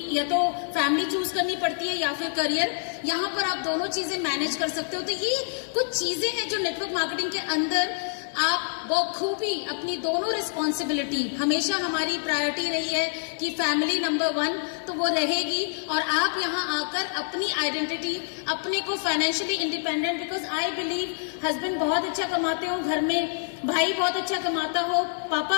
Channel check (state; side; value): silent; right; digital silence